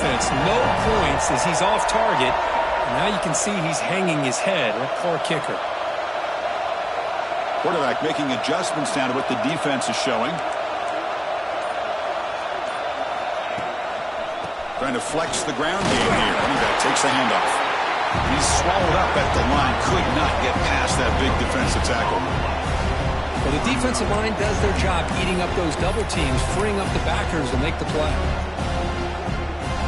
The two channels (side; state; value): both; identical; correlation 1.00